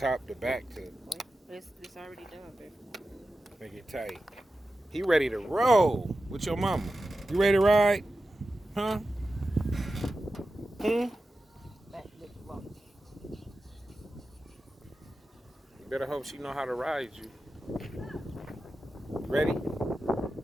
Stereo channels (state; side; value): normal; both; correlation 0.92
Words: to back to Wait, it's already done, baby. make it tight. He ready to roll with your mama. You ready to ride? Huh? Back, lick, walk. You better hope she know how to ride you. Ready?